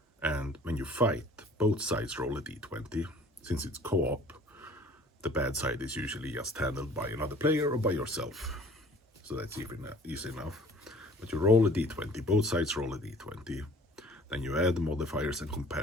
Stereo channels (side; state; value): both; normal; correlation 0.50